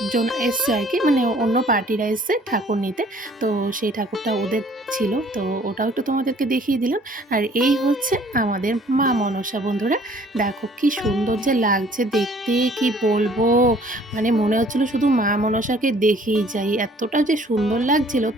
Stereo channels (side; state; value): both; normal; correlation 0.56